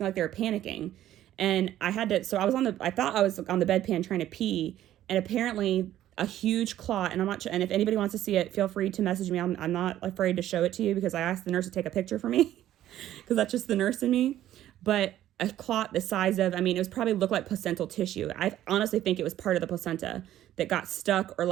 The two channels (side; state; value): left; quieter; 12.7 dB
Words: like they were panicking. And I thought I was on the bedpan trying to pee. And apparently a huge clot, and and if anybody wants to see it, feel free to message me. I'm not afraid to show it to you because I asked the nurse to take a picture for me because that's just the nurse in me. But a clot the size of, it was probably looked like placental tissue. I honestly think it was part of the placenta that got stuck or